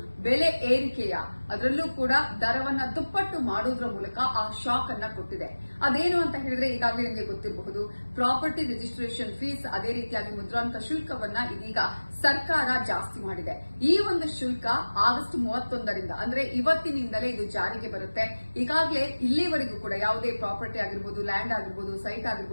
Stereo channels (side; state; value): both; inverted; correlation -1.00